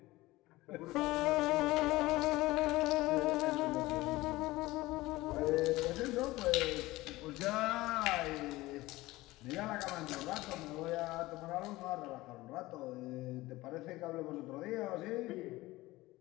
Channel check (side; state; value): right; quieter; 19.0 dB